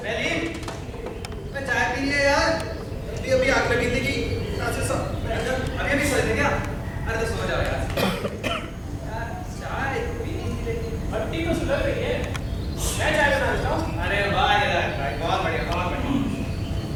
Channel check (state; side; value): identical; both; correlation 1.00